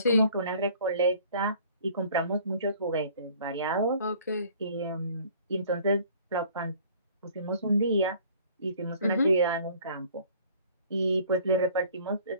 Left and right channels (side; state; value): both; inverted; correlation -0.53